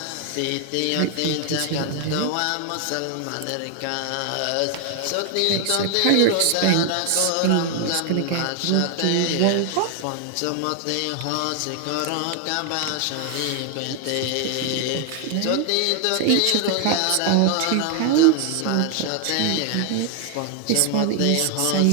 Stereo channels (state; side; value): different; both; correlation 0.00